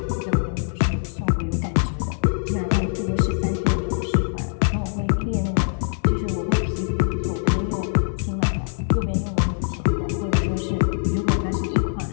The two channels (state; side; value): silent; right; digital silence